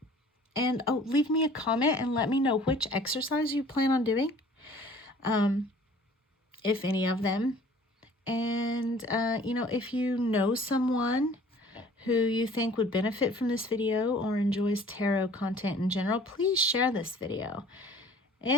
And leave me a comment and let me know which exercise you plan on doing, if any of them. And, if you know someone who you think would benefit from this video or enjoys tarot content in general, please share this video.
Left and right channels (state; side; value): normal; both; correlation 0.51